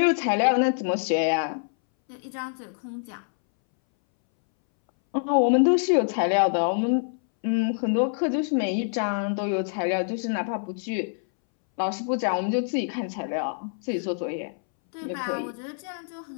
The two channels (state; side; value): silent; right; 61 dB below the other